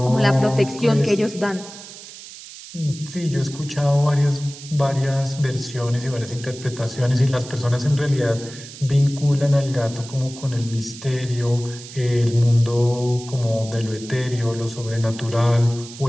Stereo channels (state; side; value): noise; right; hiss, 15 dB below the sound